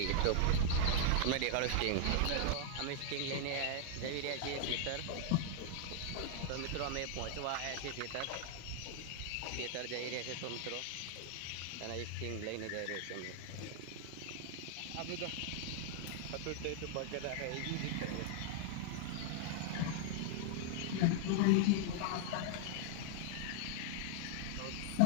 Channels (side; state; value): both; different; correlation 0.00